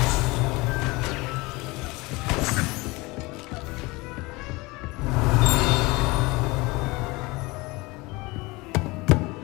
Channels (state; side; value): quieter; right; 23.5 dB